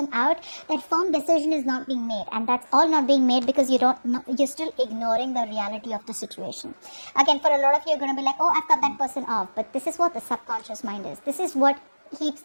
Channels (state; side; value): inverted; both; correlation -1.00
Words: out. That firm decision is not being made, and that's all not being made because you're still ignoring the reality of the situation. Again, for a lot of you, you're going to be like, oh, I've cut that person off. But this is what the subconscious mind is. This is what keeps